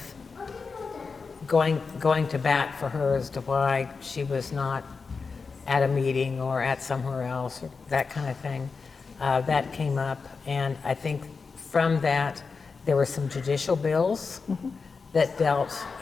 going to bat for her as to why she was not at a meeting or at somewhere else, or that kind of thing, that came up. And I think from that, there were some judicial bills that dealt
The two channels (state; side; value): quieter; right; 4.8 dB